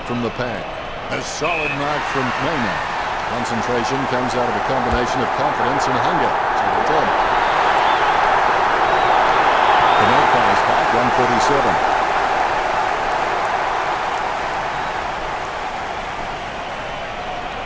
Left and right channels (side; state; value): both; identical; correlation 1.00